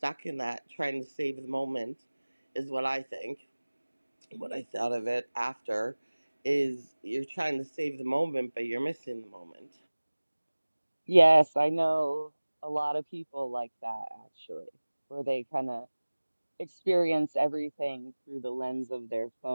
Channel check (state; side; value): inverted; both; correlation -1.00